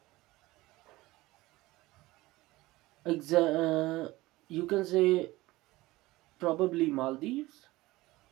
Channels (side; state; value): left; quieter; 19.3 dB